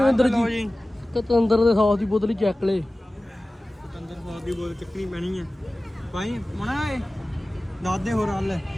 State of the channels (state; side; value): normal; both; correlation 0.97